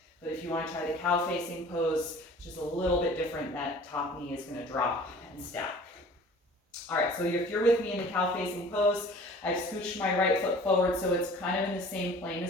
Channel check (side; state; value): both; normal; correlation 0.47